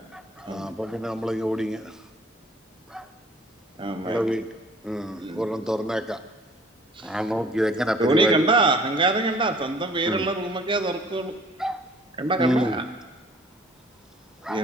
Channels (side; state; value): both; normal; correlation 0.53